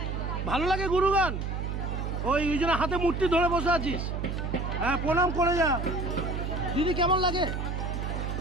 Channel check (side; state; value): right; noise; hum, 3 dB below the sound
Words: ভালো লাগে গুরুগান? ওই জন্য হাতে মূর্তি ধরে বসে আছিস? হ্যাঁ, প্রণাম করে যা। দিদি কেমন লাগে?